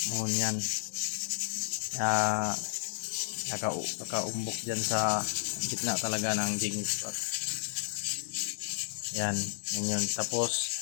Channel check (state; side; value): silent; right; 56 dB below the other